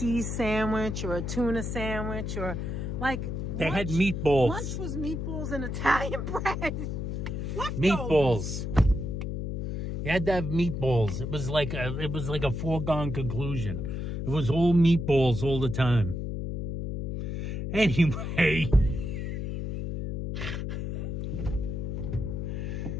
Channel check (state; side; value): noise; left; hum, 3 dB below the sound